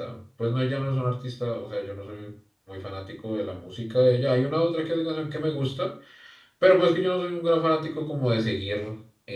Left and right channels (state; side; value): identical; both; correlation 1.00